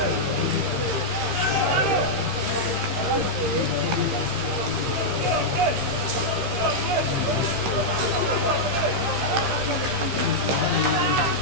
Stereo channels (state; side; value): late; left; 15 ms